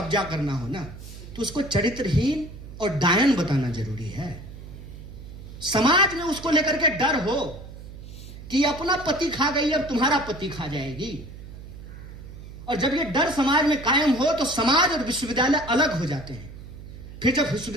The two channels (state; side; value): noise; right; hum, 14 dB below the sound